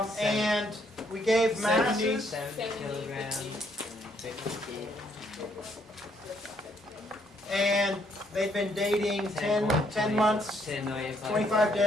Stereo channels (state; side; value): normal; both; correlation 0.70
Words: And we gave masses. 70 kilograms. And they've been dating 10 months, 25